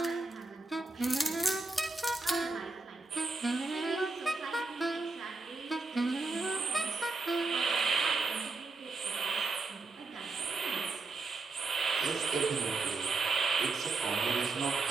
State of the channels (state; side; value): quieter; left; 3.6 dB